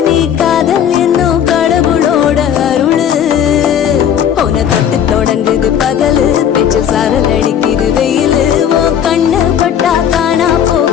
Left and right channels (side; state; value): right; quieter; 9.1 dB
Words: நீ காதல் என்னும் கடவுளோட அருளு உன தொட்டு தொடங்குது பகலு பேச்சு சாரல் அடிக்குது வெயிலு ஓ கண்ணு பட்டா காணா